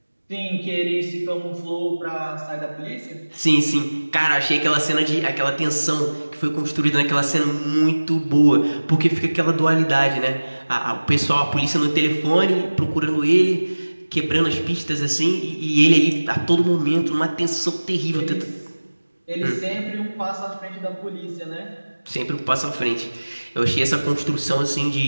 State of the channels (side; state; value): both; inverted; correlation -1.00